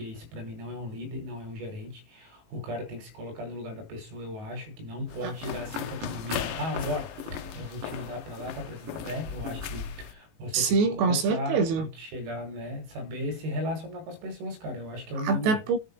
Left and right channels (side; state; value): left; late; 18 ms